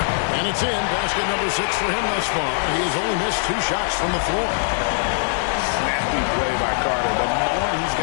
And it's in. Basket number 6 for him thus far. He has only missed 2 shots from the floor. Snappy play by Carter. The moment he's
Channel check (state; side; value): silent; right; 63 dB below the other